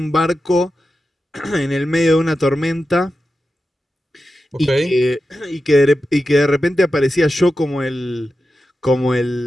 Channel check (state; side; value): normal; both; correlation 0.91